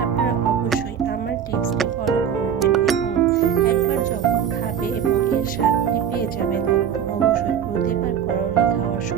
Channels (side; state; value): left; quieter; 8.4 dB